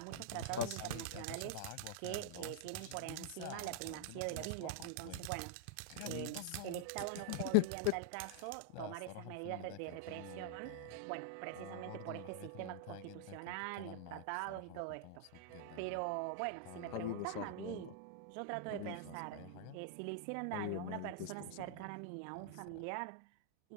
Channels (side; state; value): both; different; correlation -0.01